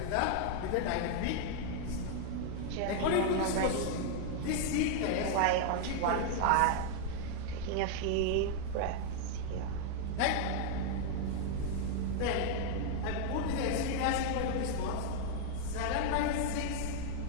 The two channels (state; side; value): different; both; correlation 0.00